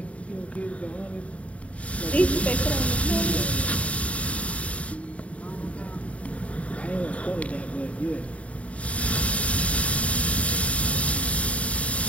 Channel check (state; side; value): late; right; 0.065 ms